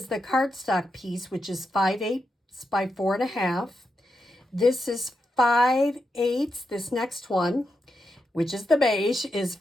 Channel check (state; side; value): normal; both; correlation 0.86